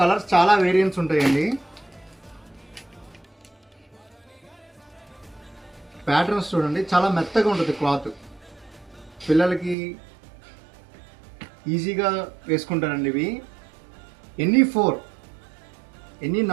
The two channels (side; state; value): left; drops out; at 9.8 s